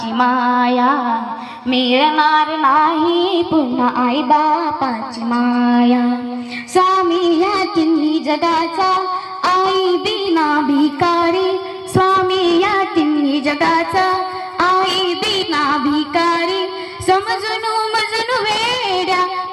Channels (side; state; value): both; identical; correlation 1.00